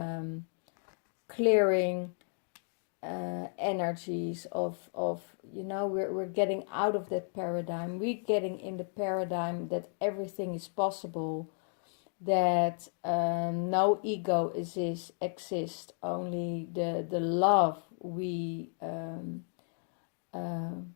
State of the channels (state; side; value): silent; right; 55 dB below the other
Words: clearing energies, of we're getting out of that paradigm. We're getting in the paradigm that everything is possible, that no ego exists, only the love we